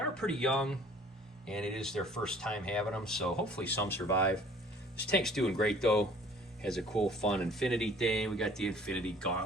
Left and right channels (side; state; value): both; normal; correlation 0.53